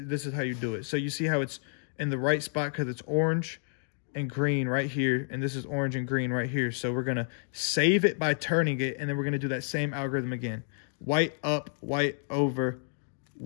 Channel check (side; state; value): right; silent; digital silence